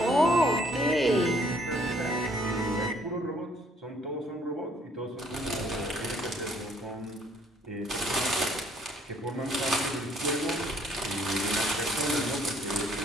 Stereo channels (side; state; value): both; normal; correlation 0.63